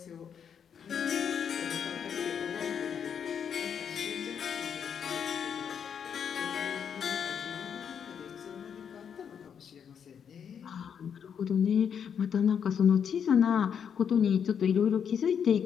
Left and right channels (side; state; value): right; quieter; 7.7 dB